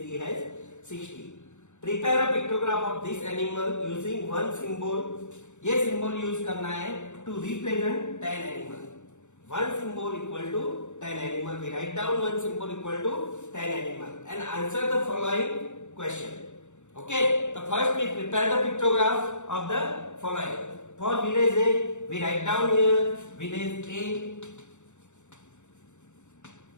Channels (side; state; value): right; late; 0.84 ms